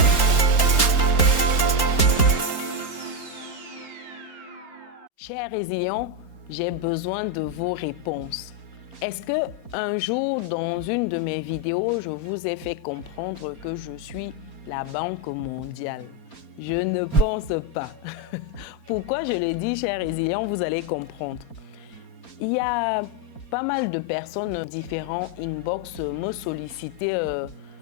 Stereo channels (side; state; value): right; late; 4.3 ms